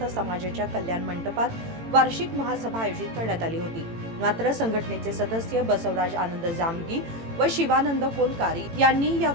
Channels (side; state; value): left; late; 18 ms